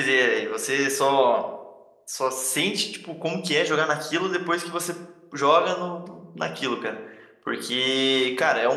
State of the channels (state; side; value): identical; both; correlation 1.00